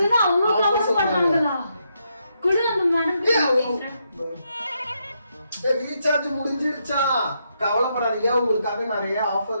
தான் அவ்வளவு கவர் பண்ணாங்களா? குடு அந்த மேடம். ரீசார்ஜ் முடிஞ்சிருச்சா? கவலைப்படாதீங்க, உங்களுக்காக நிறைய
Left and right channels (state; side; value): inverted; both; correlation -0.79